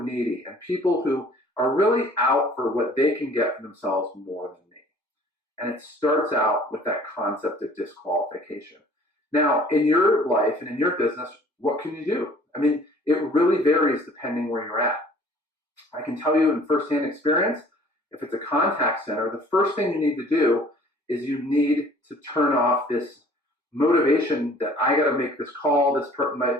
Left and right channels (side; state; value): both; normal; correlation 0.53